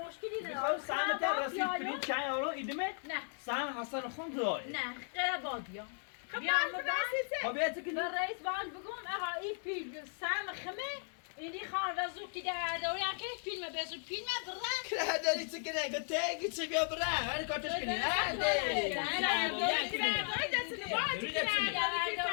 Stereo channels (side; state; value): right; silent; 54 dB below the other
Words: نداره. میخوام سهم تا رسید پرینت چای اورو ایدمت. نه. سهم حسن خون داره. نه غیر بادیا. خب بیاید که به رئیس بانک بگم آقا این پیل سهم خمه اینی خان و زود که در دوری هم که فیلم بزود فیلم برن که داری چه کنه که تگی چه بیا بره هر کارتش کنی